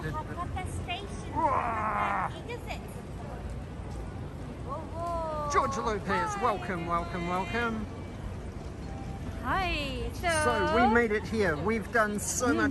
station. Whoa. George Lopez, welcome. Hi. So we made it here. We've done so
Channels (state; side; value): identical; both; correlation 1.00